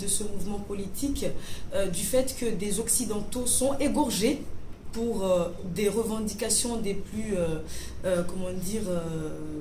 ce mouvement politique, du fait que des Occidentaux sont égorgés pour des revendications des plus,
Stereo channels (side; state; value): both; identical; correlation 1.00